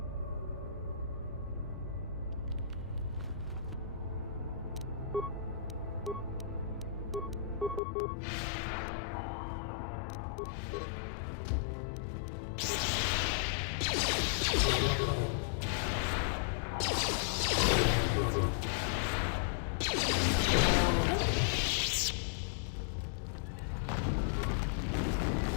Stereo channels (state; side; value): drops out; right; at 7.8 s